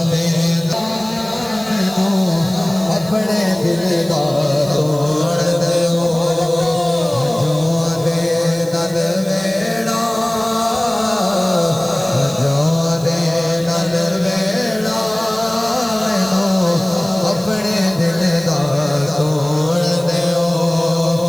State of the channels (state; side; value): noise; right; hiss, 19 dB below the sound